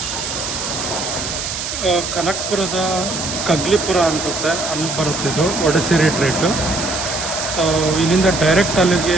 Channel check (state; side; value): noise; right; hiss, 5 dB below the sound